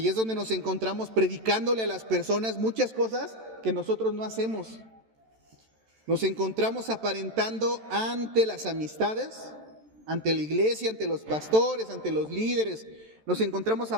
es donde nos encontramos predicándole a las personas muchas cosas que nosotros no hacemos. Nos encontramos aparentando ante las amistades, ante la iglesia, ante los pastores, ante los líderes. Nos encontramos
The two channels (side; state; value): left; late; 13 ms